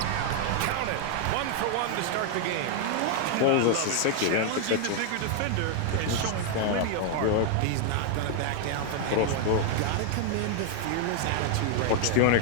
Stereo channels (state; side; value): different; both; correlation 0.00